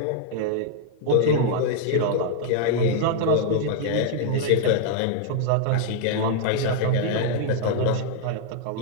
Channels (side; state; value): both; different; correlation 0.00